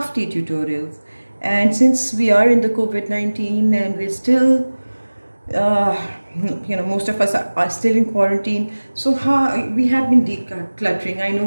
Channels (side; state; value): both; inverted; correlation -1.00